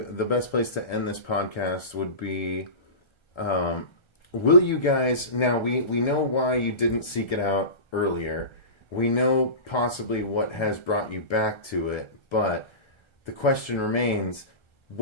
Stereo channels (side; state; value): right; late; 1.3 ms